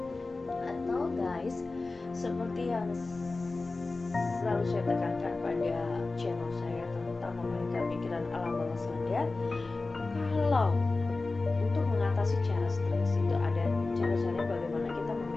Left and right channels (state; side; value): quieter; right; 3.5 dB